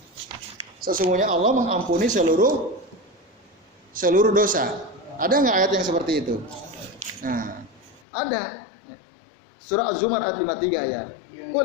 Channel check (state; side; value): drops out; right; at 8.0 s